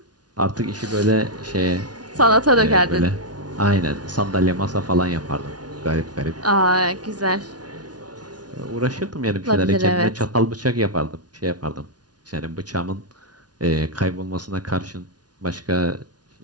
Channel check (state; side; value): late; left; 0.69 ms